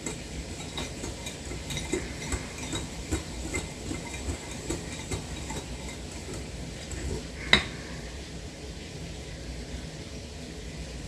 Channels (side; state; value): both; identical; correlation 1.00